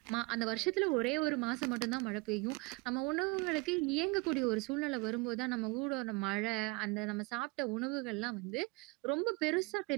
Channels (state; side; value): quieter; left; 26.3 dB